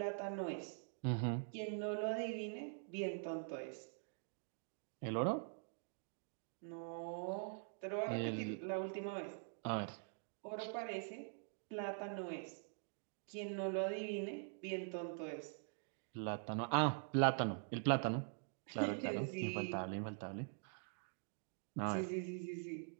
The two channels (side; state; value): left; silent; digital silence